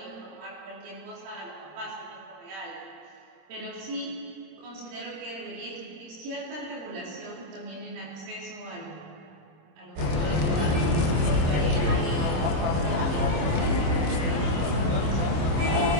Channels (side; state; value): left; late; 26 ms